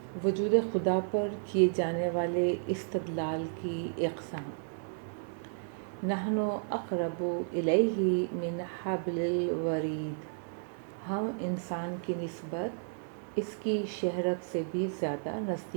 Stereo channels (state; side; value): silent; left; 56 dB below the other